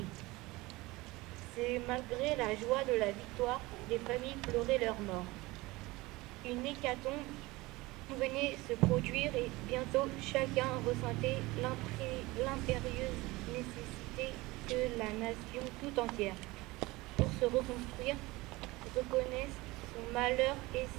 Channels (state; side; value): quieter; left; 21.2 dB